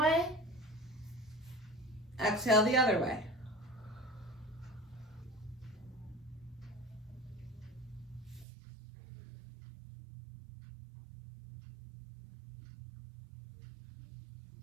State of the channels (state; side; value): drops out; left; at 8.5 s